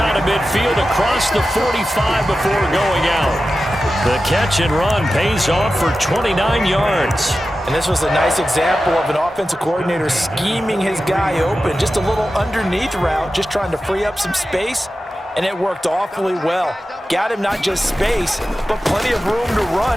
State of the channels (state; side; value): normal; both; correlation 0.93